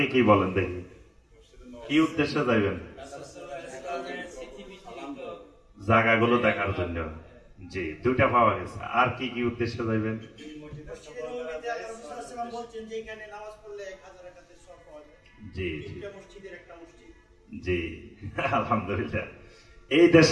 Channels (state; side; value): identical; both; correlation 1.00